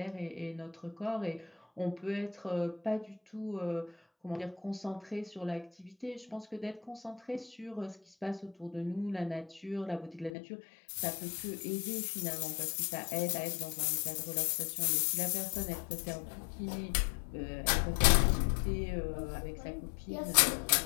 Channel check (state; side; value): drops out; right; at 10.3 s